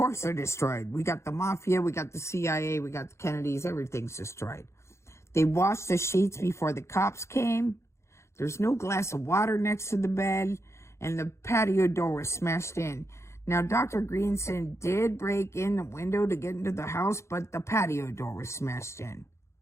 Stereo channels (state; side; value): late; right; 0.13 ms